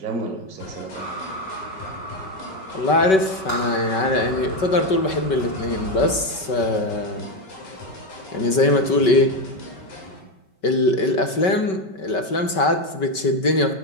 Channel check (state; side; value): late; right; 5.3 ms